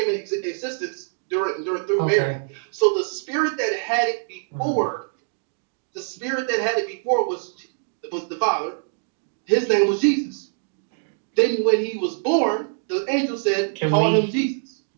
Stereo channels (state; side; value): silent; left; digital silence